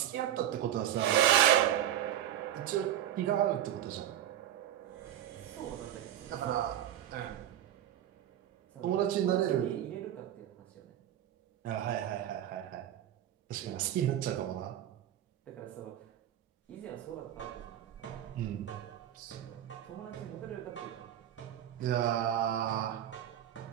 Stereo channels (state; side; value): quieter; left; 11.5 dB